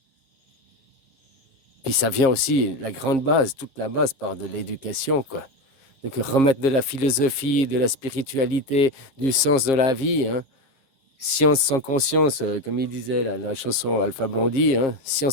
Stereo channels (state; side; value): late; right; 7.5 ms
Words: Puis ça vient aussi, la grande base, toute la base part de l'éducation, quoi. Donc remettre de la philosophie, de la spiritualité, du sens de la vie, hein. Science sans conscience, comme il disait la chanson Alpha Blondy, hein.